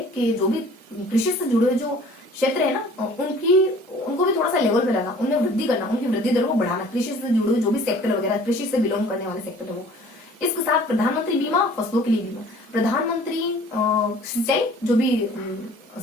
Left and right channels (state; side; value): normal; both; correlation 0.50